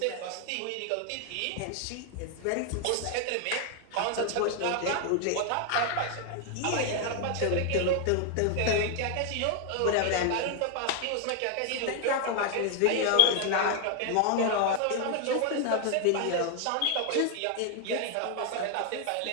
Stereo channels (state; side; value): different; both; correlation 0.00